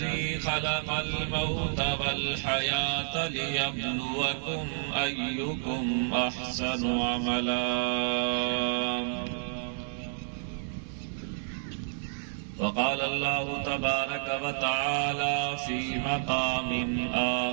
خلق الموت والحياة ليبلوكم أيكم أحسن عملا وقال الله تبارك وتعالى في مقام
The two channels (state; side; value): silent; left; 57 dB below the other